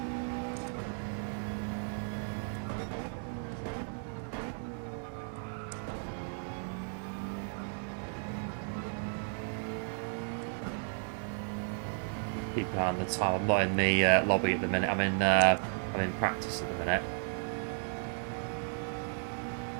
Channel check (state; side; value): silent; left; 55 dB below the other